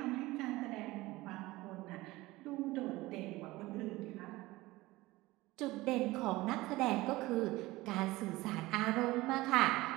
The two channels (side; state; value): left; quieter; 19.4 dB